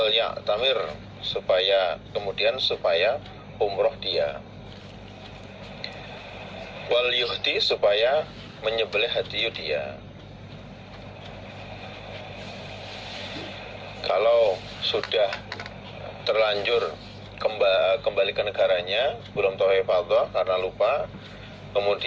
ya'tamir, supaya umroh dia, wal yuhdi, supaya menyembelih hadiyu dia. Kalau sudah terlanjur kembali ke negaranya, belum tawaf ifadah karena lupa,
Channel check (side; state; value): both; identical; correlation 1.00